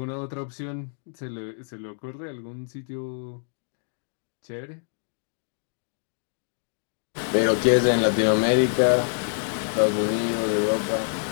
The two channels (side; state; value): right; silent; digital silence